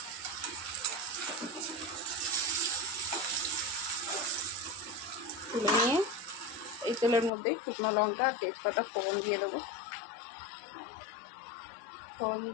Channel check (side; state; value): right; drops out; at 7.3 s